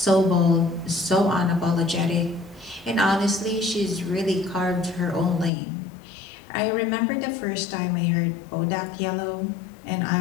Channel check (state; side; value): drops out; right; at 5.5 s